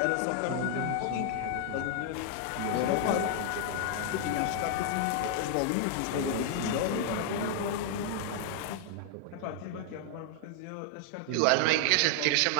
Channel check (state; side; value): different; both; correlation -0.01